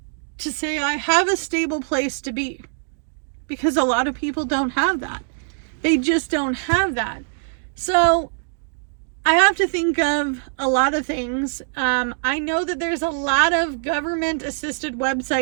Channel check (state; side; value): silent; left; digital silence